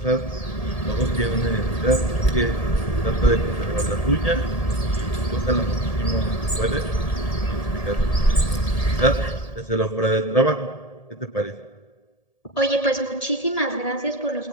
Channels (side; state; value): right; late; 1.8 ms